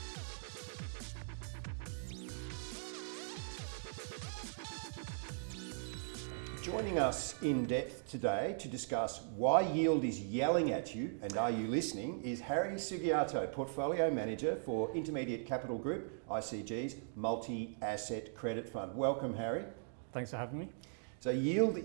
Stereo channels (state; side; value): silent; left; digital silence